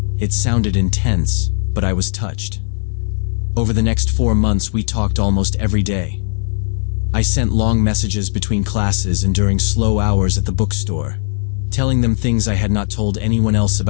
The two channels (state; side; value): silent; right; digital silence